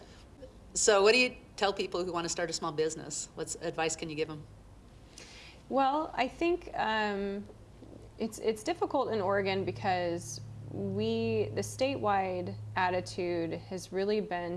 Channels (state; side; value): identical; both; correlation 1.00